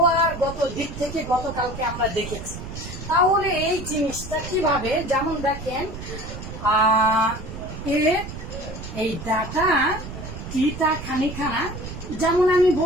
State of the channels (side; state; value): right; noise; rumble, 10 dB below the sound